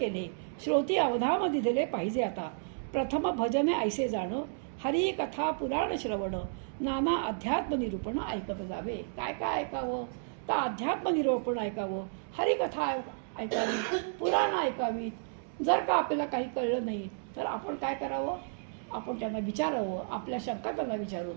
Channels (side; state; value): left; silent; digital silence